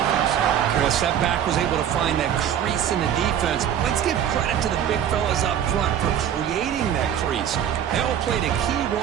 Chris, that back was able to find that crease in the defense. Let's give credit to the big fellas up front for creating that crease. They all played a key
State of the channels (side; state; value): left; quieter; 9.6 dB